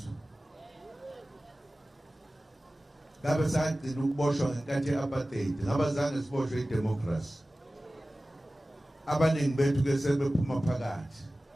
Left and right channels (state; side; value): normal; both; correlation 0.96